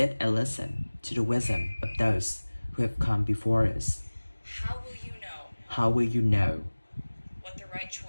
and listen to the wisdom of those who have come before us. How will you know How will you know what the right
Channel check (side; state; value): both; inverted; correlation -1.00